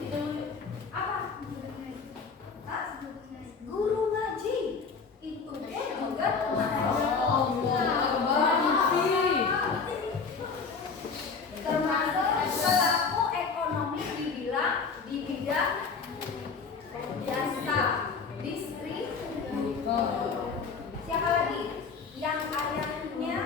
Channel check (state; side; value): quieter; right; 5.1 dB